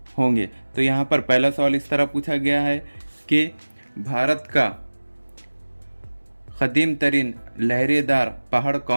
होंगे। तो यहाँ पर पहला सवाल इस तरह पूछा गया है कि भारत का कदीम तरीन लहरेदार पहाड़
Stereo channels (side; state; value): both; inverted; correlation -1.00